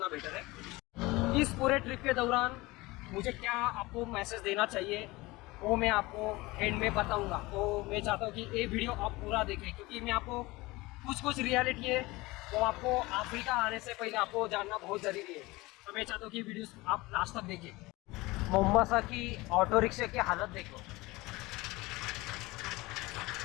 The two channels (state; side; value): quieter; right; 21.4 dB